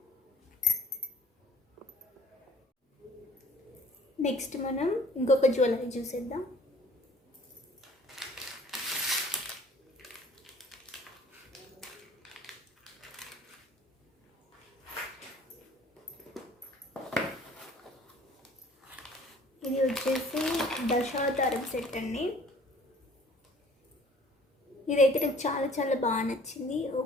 నెక్స్ట్ మనం ఇంకొక జ్యువెలరీ చూసేద్దాం. ఇది వచ్చేసి దశావతారం సెట్ అండి. ఇదైతే నాకు చాలా చాలా బాగా నచ్చింది.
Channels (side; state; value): both; normal; correlation 0.52